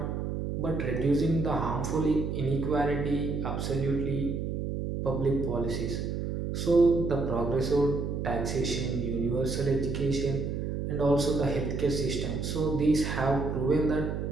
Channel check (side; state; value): right; noise; hum, 3 dB below the sound